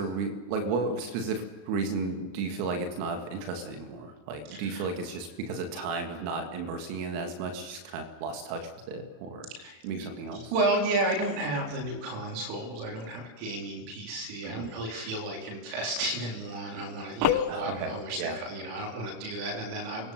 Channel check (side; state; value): left; late; 34 ms